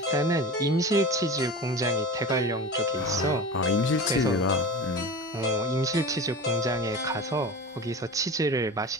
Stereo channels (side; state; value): both; normal; correlation 0.32